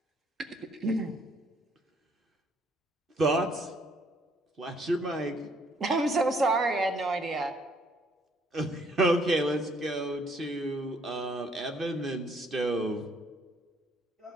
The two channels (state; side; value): normal; both; correlation 0.66